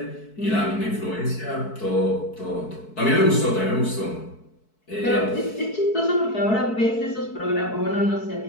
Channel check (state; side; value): late; right; 4.6 ms